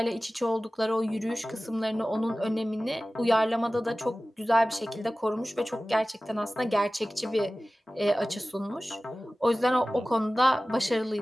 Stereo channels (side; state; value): both; normal; correlation 0.97